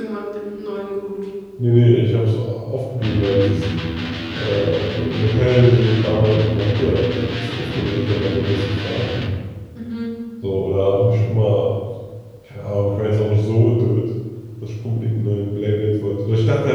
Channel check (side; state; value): both; identical; correlation 1.00